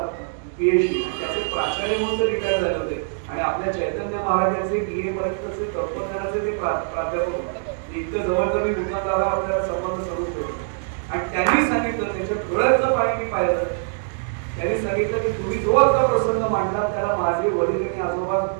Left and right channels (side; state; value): left; silent; digital silence